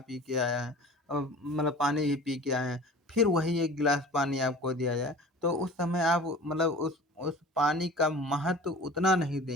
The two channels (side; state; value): both; normal; correlation 0.41